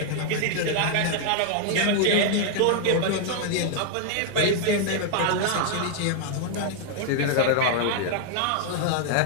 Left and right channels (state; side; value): different; both; correlation 0.00